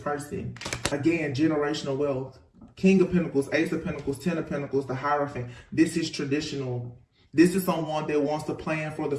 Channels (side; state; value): both; identical; correlation 1.00